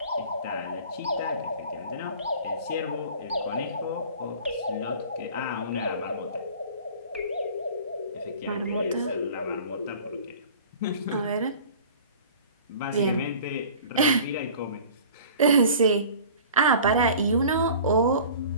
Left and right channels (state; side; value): inverted; both; correlation -0.44